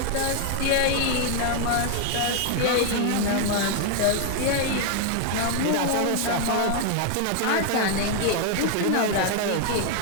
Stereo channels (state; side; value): different; both; correlation 0.00